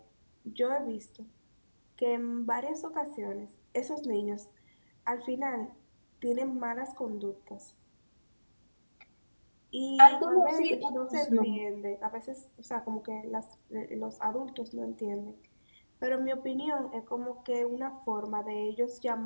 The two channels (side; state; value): both; inverted; correlation -1.00